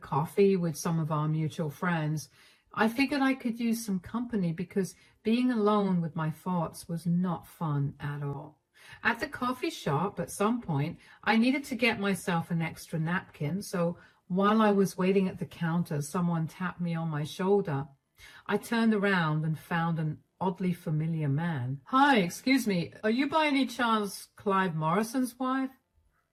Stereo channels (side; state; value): both; identical; correlation 1.00